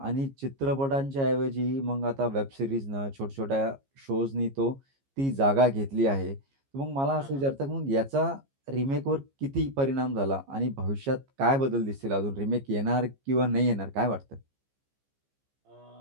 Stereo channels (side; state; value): left; late; 15 ms